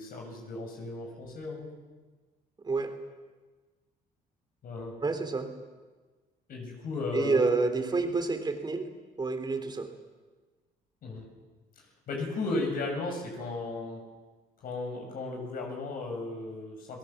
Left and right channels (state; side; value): normal; both; correlation 0.67